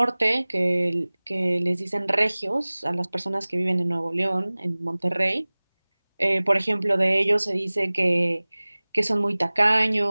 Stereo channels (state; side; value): inverted; both; correlation -1.00